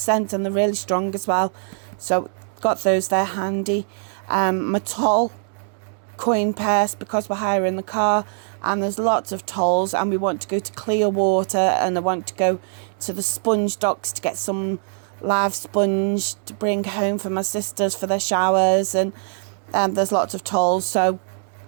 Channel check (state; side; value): silent; left; 64 dB below the other